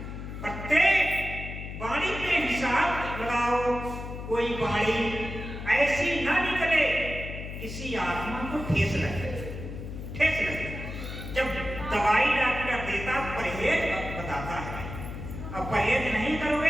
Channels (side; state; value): left; noise; hum, 8 dB below the sound